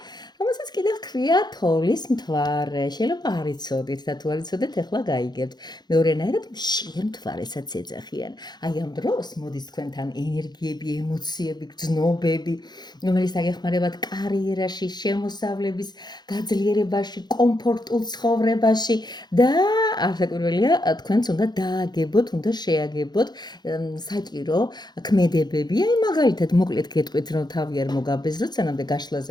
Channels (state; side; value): late; right; 0.20 ms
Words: რომელსაც კიდევ ჰქვია თოვლის მთვარე. შეიძლება არ იცოდით და თუ არ იცოდეთ, ახლა გაიგებთ. მეორენაირად მშიერ მთვარესაც ეძახიან. აი ამ დროს მოდის თქვენთან ენერგიები, ემოციები, გრძნობები, რომელიც დაგეხმარებათ კარიერაში, შემოსავლების გაძლიერებაში, კომფორტულ ცხოვრებაში და არასაკვირველია, თქვენც უნდა დააგებოთ, უნდა შეაგებოთ საჭირო ქმედებები. აი მაგალითად მოკლედ გეტყვით, რომ თავი არ მოგაბეზროთ, სანამდე